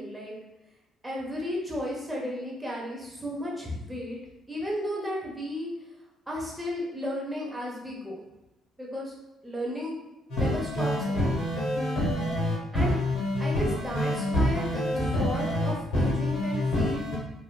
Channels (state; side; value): normal; both; correlation 0.73